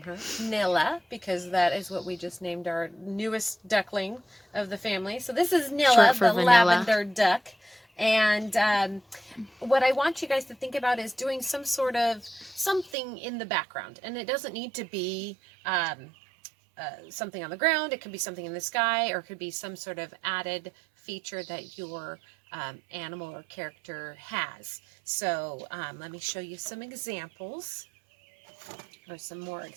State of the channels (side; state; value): left; drops out; at 13.0 s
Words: her Nilla, because that is what we just named our newest duckling of the family. So this is Nilla, Short for the vanilla. lavender duck. And what I want you guys to think about is doing some sort of something in the background. And it doesn't need to be something on the ground. It could be something in the sky, or it could be some sort of added feature that your animal or character has. So let me show you some examples, or some more